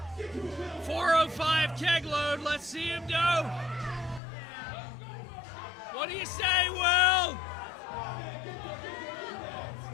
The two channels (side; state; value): right; drops out; at 4.2 s